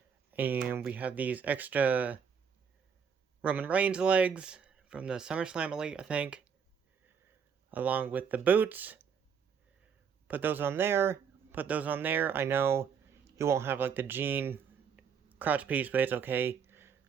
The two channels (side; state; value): left; quieter; 6.9 dB